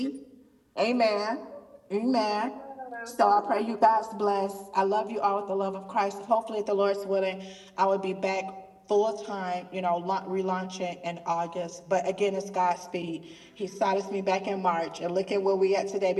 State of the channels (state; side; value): identical; both; correlation 1.00